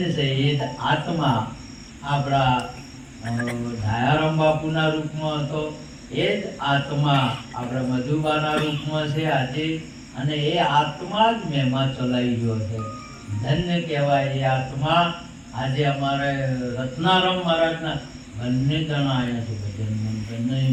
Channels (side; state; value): both; identical; correlation 1.00